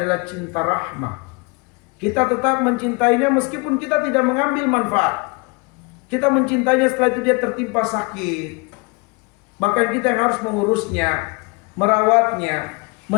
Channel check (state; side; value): quieter; right; 29.3 dB